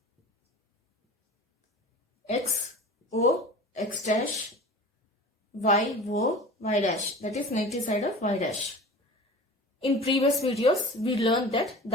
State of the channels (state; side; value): normal; both; correlation 0.37